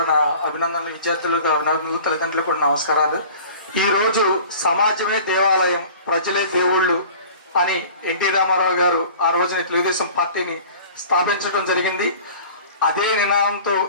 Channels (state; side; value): inverted; both; correlation -0.43